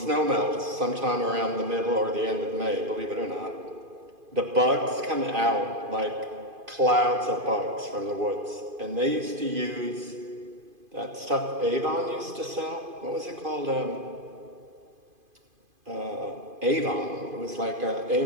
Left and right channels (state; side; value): late; left; 2.5 ms